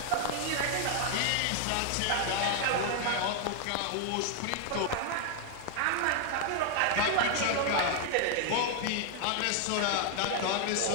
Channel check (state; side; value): different; both; correlation 0.00